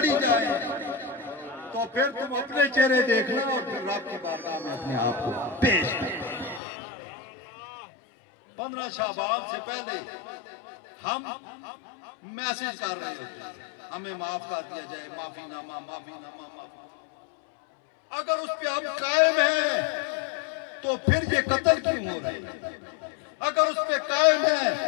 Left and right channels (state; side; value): drops out; right; at 6.6 s